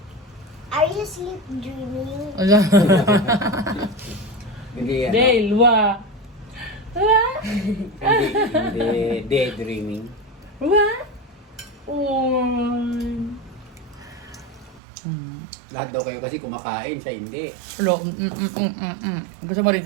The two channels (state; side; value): drops out; left; at 14.8 s